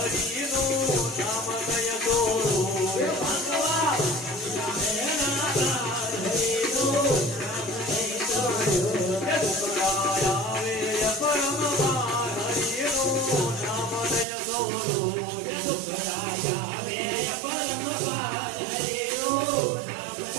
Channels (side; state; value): left; drops out; at 14.2 s